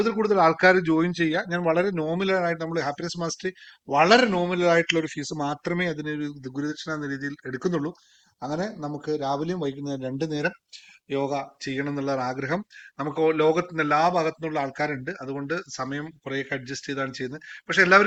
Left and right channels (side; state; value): both; identical; correlation 1.00